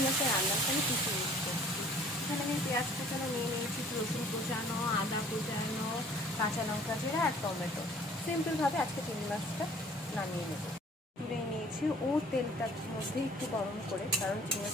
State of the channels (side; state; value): both; normal; correlation 0.53